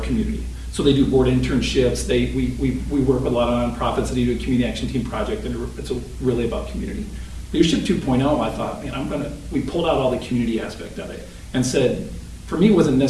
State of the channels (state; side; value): identical; both; correlation 1.00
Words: So they do board internships. We work with a lot of nonprofits that do a community action team project, and it's really about community. Leadership 2.0, I thought, man, we pulled out all the community aspect of it and said, for me, it wasn't